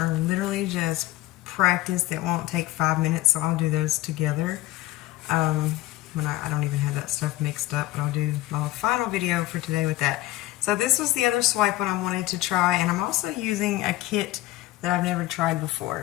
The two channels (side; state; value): right; quieter; 17.0 dB